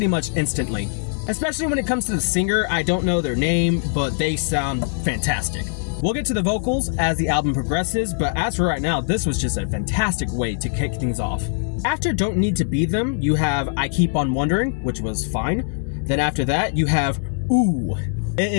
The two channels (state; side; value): silent; right; digital silence